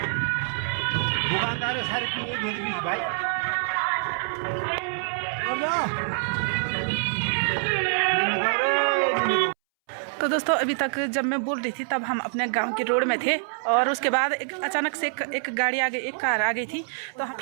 दुकानदार सारे भाई। तो दोस्तों अभी तक जब मैं बोल रही थी तब हम अपने गांव की रोड में थे। और उसके बाद अचानक से एक गाड़ी आ गई, एक कार आ गई थी। तो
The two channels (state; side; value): silent; left; 61 dB below the other